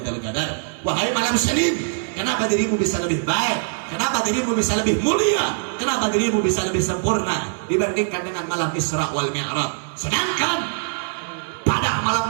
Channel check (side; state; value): left; silent; 64 dB below the other